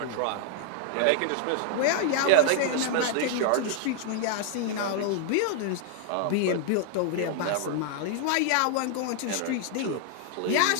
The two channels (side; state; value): both; different; correlation -0.01